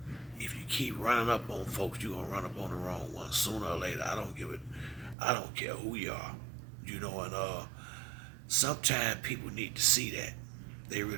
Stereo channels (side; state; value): left; drops out; at 5.2 s